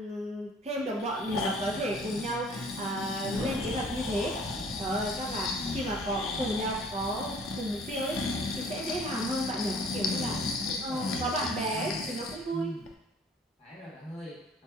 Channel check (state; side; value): normal; both; correlation 0.52